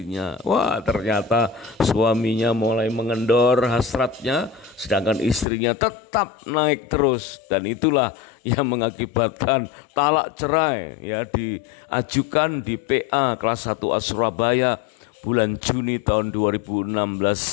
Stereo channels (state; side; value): drops out; right; at 5.5 s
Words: Ternyata suaminya mulai mengendor hasratnya, sedangkan istrinya tetap naik terus, dan itulah yang mengakibatkan talak cerai diajukan di PA kelas 1A Surabaya bulan Juni tahun 2016